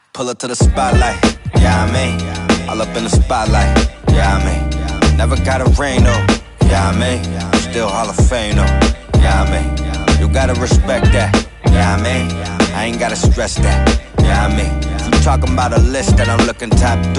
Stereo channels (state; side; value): identical; both; correlation 1.00